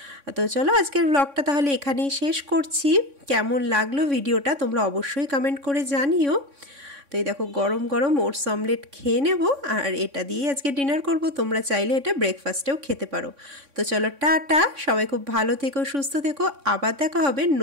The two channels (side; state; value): left; late; 3.6 ms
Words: তো চলো আজকের ব্লগটা তাহলে এখানেই শেষ করছি। কেমন লাগলো ভিডিওটা তোমরা অবশ্যই কমেন্ট করে জানিও। তো এই দেখো গরম গরম ওটস অমলেট খেয়ে নেব, আর এটা দিয়েই আজকে ডিনার করব। তোমরা চাইলে এটা ব্রেকফাস্টেও খেতে পারো। তো চলো টাটা, সবাই খুব ভালো থেকো, সুস্থ থেকো, আবার দেখা হবে